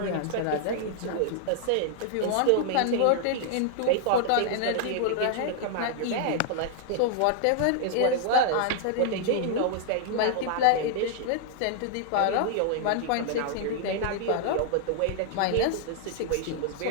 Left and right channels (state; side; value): different; both; correlation -0.01